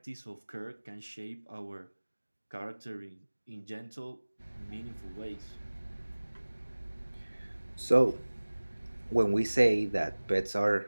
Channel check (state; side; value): inverted; both; correlation -1.00